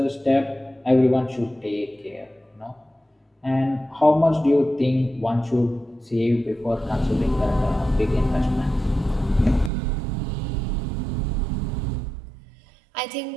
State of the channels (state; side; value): drops out; left; at 9.7 s